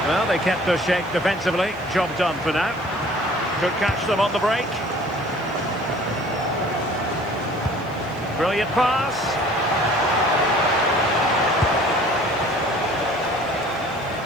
Well, they kept their shape defensively. Job done for now. Could catch them on the break. Brilliant pass.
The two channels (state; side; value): noise; right; hiss, 27 dB below the sound